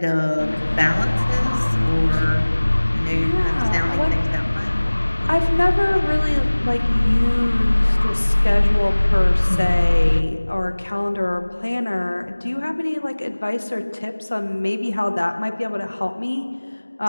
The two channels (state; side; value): inverted; both; correlation -1.00